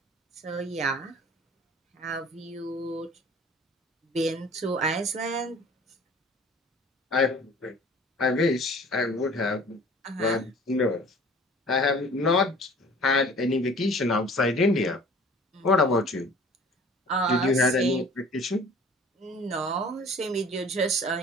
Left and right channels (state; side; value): normal; both; correlation 0.47